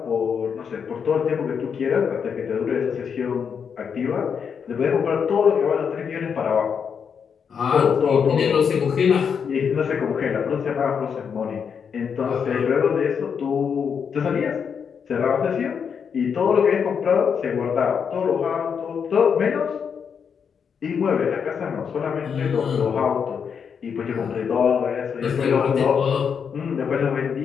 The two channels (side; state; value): right; quieter; 6.8 dB